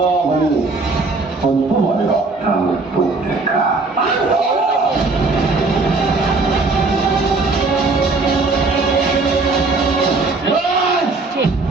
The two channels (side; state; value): left; quieter; 3.7 dB